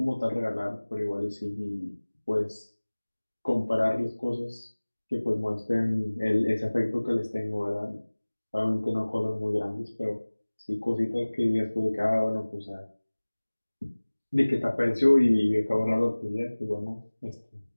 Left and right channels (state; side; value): inverted; both; correlation -1.00